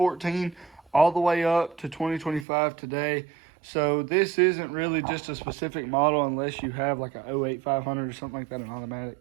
all the way up to 2025 today. So this isn't really just a specific model unless you have like a 08 500 or something like that, an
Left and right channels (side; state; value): left; drops out; at 2.5 s